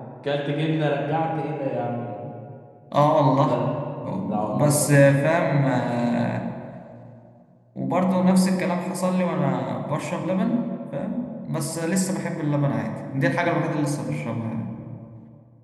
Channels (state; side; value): identical; both; correlation 1.00